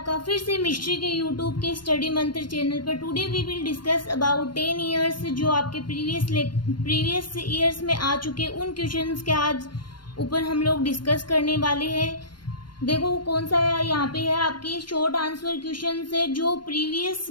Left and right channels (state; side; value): late; right; 0.72 ms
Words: फिर से मिस्ट्री के यूट्यूब के स्टडी मंत्र चैनल पर। Today we will discuss about 10 years जो आपके प्रीवियस ईयर्स में आ चुके उन क्वेश्चंस के आज ऊपर हम लोग डिस्कस करने वाले हैं। देखो कौन सा है, यहाँ पे है आपके शॉर्ट आंसर क्वेश्चन है जो प्रीवियस